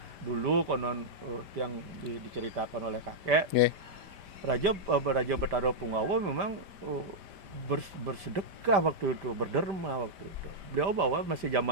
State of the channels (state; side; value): late; left; 5.1 ms